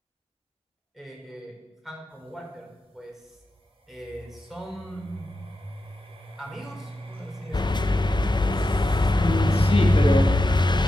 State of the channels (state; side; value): normal; both; correlation 0.89